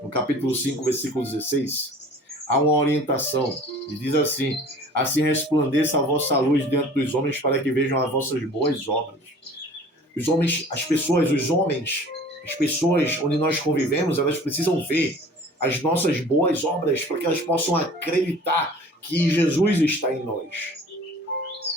capítulo 5, versículo 16, há uma orientação. E diz assim: assim resplandeça a vossa luz diante dos homens, para que vejam as vossas boas obras. Os homens, as pessoas onde nós convivemos, elas precisam ver as nossas boas obras, para que elas possam acreditar que Jesus está em nós.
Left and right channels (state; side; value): normal; both; correlation 0.46